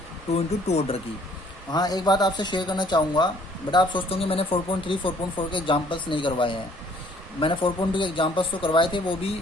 2 into 2 ऑर्डर की। हाँ एक बात आपसे शेयर करना चाहूँगा बेटा, आप सोचते होंगे मैंने 4.3 4.4 के एग्जाम्पल्स नहीं करवाए हैं। मैंने 4.2 के एग्जाम्पल्स तो करवाए थे, वो भी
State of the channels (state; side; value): normal; both; correlation 0.59